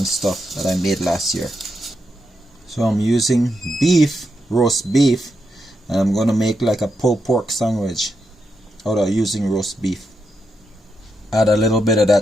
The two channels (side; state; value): both; normal; correlation 0.83